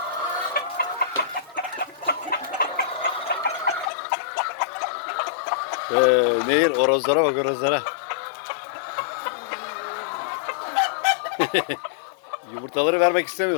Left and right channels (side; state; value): right; drops out; at 3.9 s